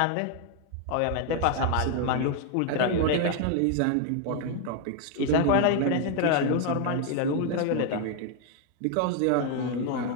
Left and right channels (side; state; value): both; different; correlation 0.00